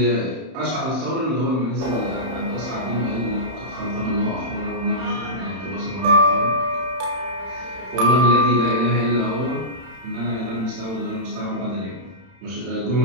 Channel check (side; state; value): left; late; 31 ms